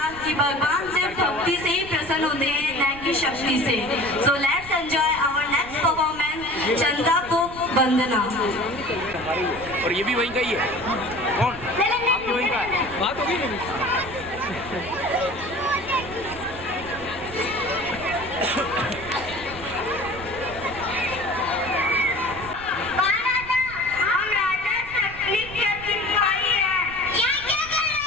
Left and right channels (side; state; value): right; noise; rumble, 18 dB below the sound